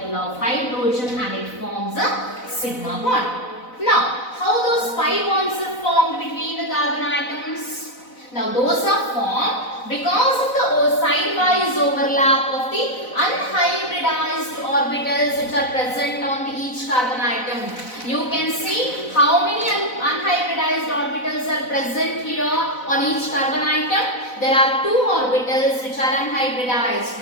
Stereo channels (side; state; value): right; late; 4.0 ms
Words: of hydrogen, and it forms a sigma bond. Now, how those pi bonds are formed between the carbon atoms? Now those are formed because of the side-wise overlap of the unhybridized orbitals which are present on each carbon atom. You can see how many unhybridized orbitals are present here on each carbon atom. There are two orbitals which are unhybridized,